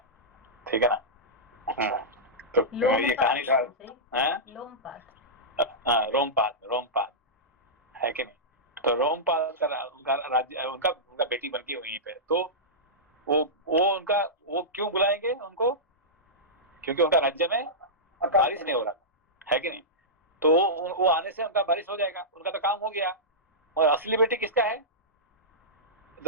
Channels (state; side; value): normal; both; correlation -0.14